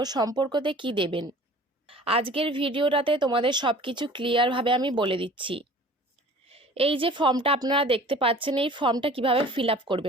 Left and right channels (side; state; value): both; normal; correlation 0.46